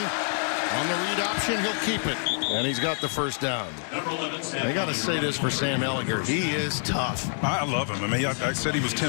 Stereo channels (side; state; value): right; silent; 59 dB below the other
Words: 1. On the read option, he'll keep it. And he's got the first down. I got to say this for Sam Ellinger. He is tough. I love him. I mean, I said he was